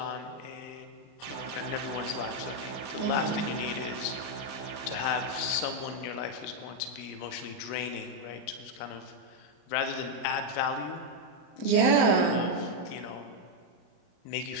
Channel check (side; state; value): right; late; 36 ms